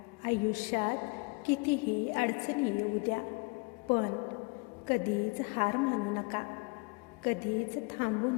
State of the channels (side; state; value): right; quieter; 30.6 dB